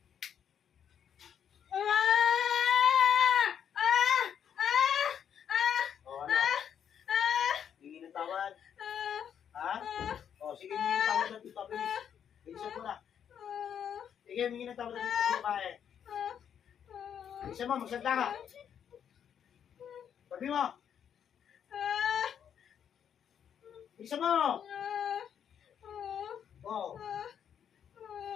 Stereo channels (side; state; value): right; quieter; 8.6 dB